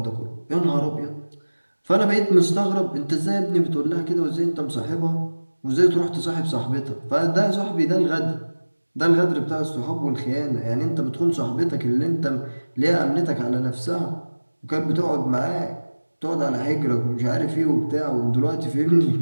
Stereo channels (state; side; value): inverted; both; correlation -1.00